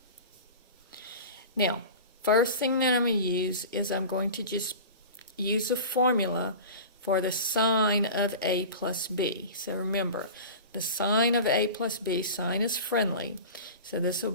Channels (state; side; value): inverted; both; correlation -0.34